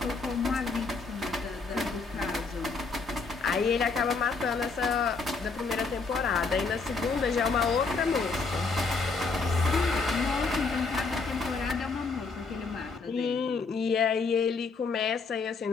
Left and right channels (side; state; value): right; quieter; 4.3 dB